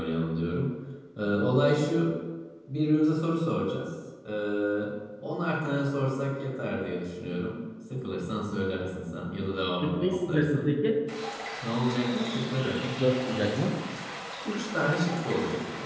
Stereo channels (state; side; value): identical; both; correlation 1.00